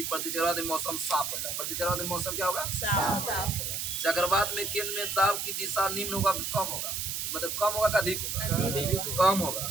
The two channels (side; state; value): right; noise; hiss, 2 dB below the sound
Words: प्रति चक्रवात में मौसम साफ होता है। प्रति चक्रवात में मौसम क्या होगा? साफ। चक्रवात में केंद्र में दाब की दिशा निम्न होगा कि कम होगा? मतलब कम होगा कि अधिक होगा? कम होगा।